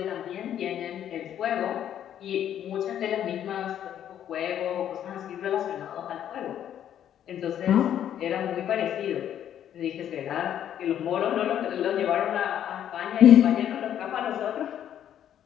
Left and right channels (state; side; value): quieter; right; 10.3 dB